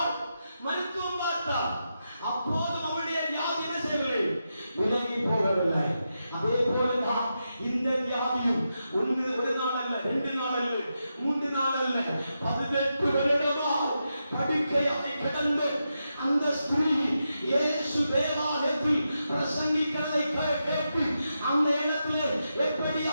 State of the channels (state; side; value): inverted; both; correlation -0.87